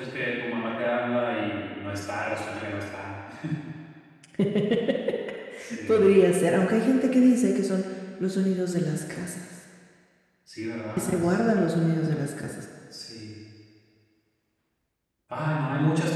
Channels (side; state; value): both; identical; correlation 1.00